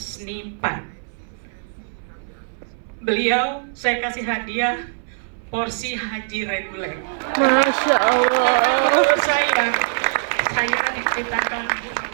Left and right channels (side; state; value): left; silent; 61 dB below the other